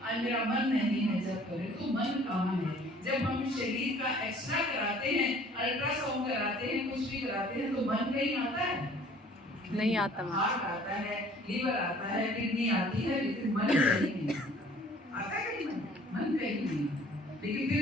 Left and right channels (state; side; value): normal; both; correlation 0.53